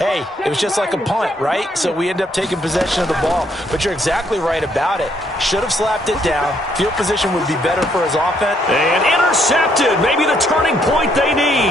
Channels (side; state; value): both; normal; correlation 0.71